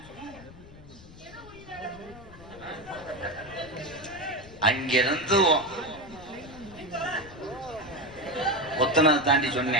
அங்கிருந்து ஒத்தனதை தாண்டி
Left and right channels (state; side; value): noise; left; rumble, 19 dB below the sound